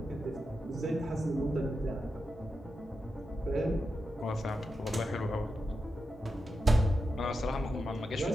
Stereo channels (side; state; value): both; normal; correlation 0.88